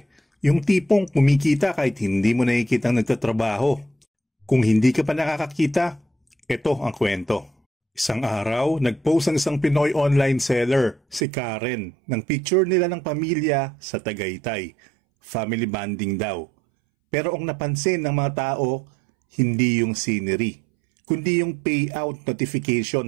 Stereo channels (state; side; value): drops out; left; at 11.2 s